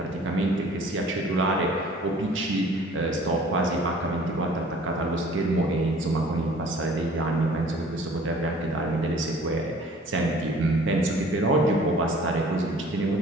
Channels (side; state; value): both; normal; correlation 0.51